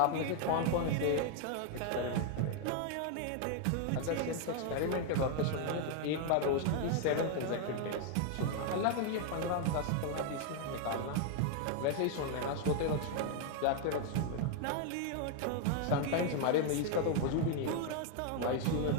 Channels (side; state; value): both; different; correlation 0.00